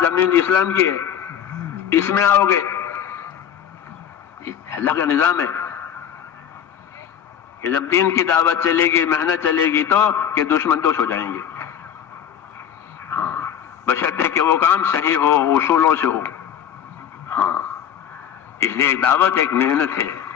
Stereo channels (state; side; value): quieter; right; 9.0 dB